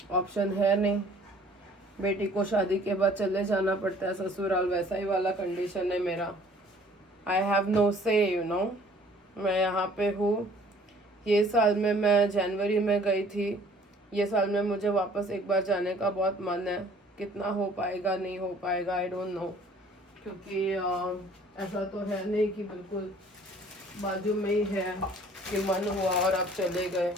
option है नहीं। बेटी को शादी के बाद चले जाना पड़ता है ससुराल, वैसा ही वाला कंडीशन है मेरा। आई हैव नो से, यू नो। मैं यहाँ पे हूँ। ये साल में मैं जनवरी में गई थी, ये साल में मुझे वापस एक बार जाने का बहुत मन है। कितना हो पाएगा नहीं हो पाएगा आई डोंट नो, क्योंकि ऐसा तो है नहीं कि बिल्कुल बाजू में ही है कि मन हुआ और आप चले गए।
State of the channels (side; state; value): both; normal; correlation 0.54